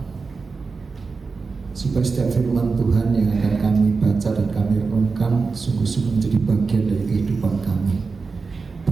supaya setiap firman Tuhan yang akan kami baca dan kami renungkan sungguh-sungguh menjadi bagian dari kehidupan kami.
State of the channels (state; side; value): quieter; left; 4.5 dB